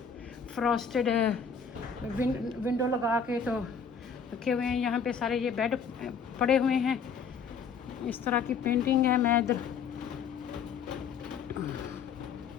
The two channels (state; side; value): quieter; right; 6.2 dB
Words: फ्रॉस्टेड विंडो लगा के तो रखे हुए हैं। यहाँ पे सारे ये बेड पड़े हुए हैं, इस तरह की पेंटिंग है। मैं इधर